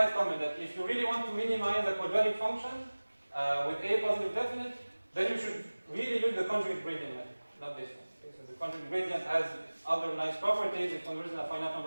comment that if you really want to minimize a quadratic function with a positive definite, then you should really use the conjugate gradient method, not this one. Okay, so the conjugate gradient has other nice properties. It converges in a finite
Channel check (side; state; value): both; inverted; correlation -1.00